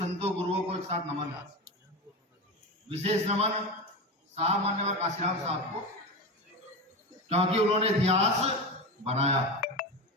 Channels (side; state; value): both; normal; correlation 0.21